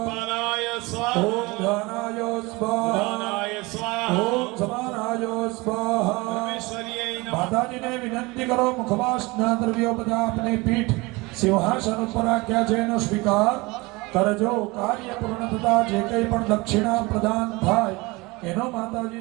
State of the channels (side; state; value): left; quieter; 23.9 dB